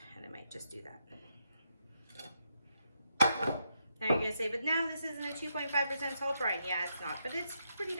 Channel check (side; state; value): both; inverted; correlation -0.81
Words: and I might just do that. Now you're gonna say, but now this isn't a 2.5% salt brine. Yeah, it's not, but it's pretty